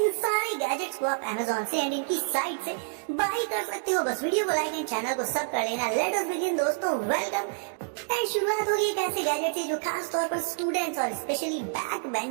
सारे गैजेट्स को आप अमेज़न से एंड इनकी साइट से बाय कर सकते हो। बस वीडियो को लाइक एंड चैनल को सब कर लेना। लेट अस बिगिन दोस्तों, वेलकम। एंड शुरुआत होगी एक ऐसे गैजेट से जो खास तौर पर स्टूडेंट्स और स्पेशली बैक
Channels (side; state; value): left; silent; digital silence